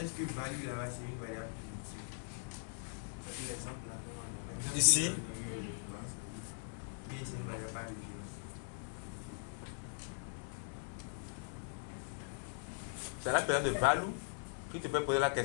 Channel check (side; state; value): right; silent; digital silence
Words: que value là-bas c'est une variable primitive? L'exemple là. Ici. Oui, c'est une variable par référence. C'est la personne de Valou qui te peut poser la